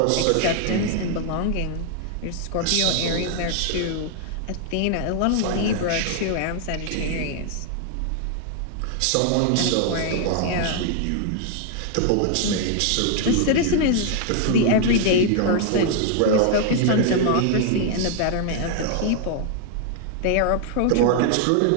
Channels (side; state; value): both; different; correlation 0.00